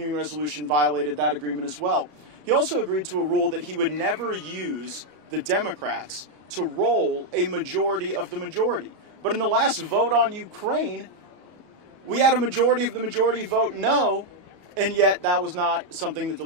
resolution violated that agreement as well. He also agreed to a rule that he would never use the Democrats to roll a majority of the majority. But in the last vote on Ukraine, we had a majority of the majority vote no, and yet that was not something that the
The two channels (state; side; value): late; left; 34 ms